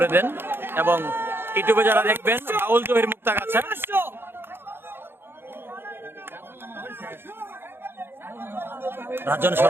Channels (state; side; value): late; left; 0.11 ms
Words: দেন, এবং ইউটিউবে যারা দেখবেন বাউল জহির মুক্তাগাছা। রাজন